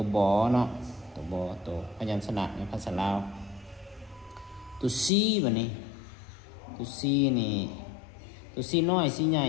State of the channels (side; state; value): right; drops out; at 5.1 s